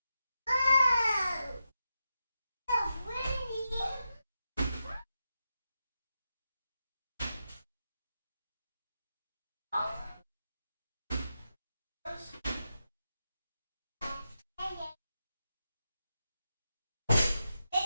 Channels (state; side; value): inverted; both; correlation -0.88